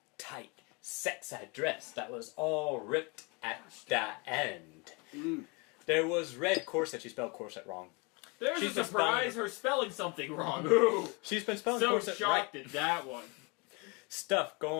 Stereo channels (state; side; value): quieter; right; 29.4 dB